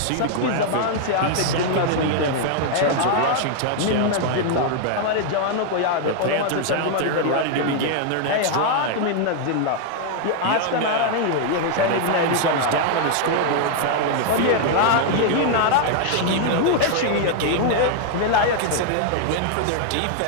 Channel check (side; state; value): both; different; correlation 0.00